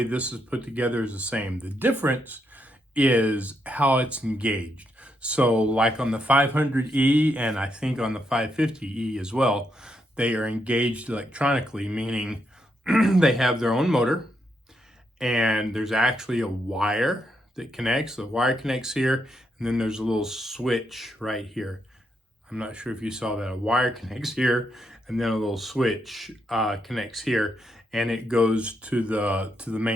this is put together is the same. The difference is how it's engaged. So like on the 500E, and I think on the 550E as well, they are engaged electronically, meaning they have their own motor, and there's actually a wire that connects. The wire connects here, and then there's a little switch right here. I'm not sure if you saw that. A wire connects here, and then a little switch connects here, and it goes to the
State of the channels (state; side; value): normal; both; correlation 0.80